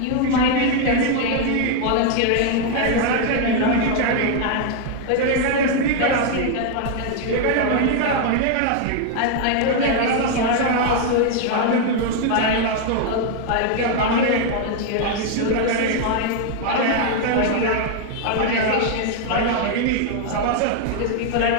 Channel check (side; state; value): both; different; correlation 0.00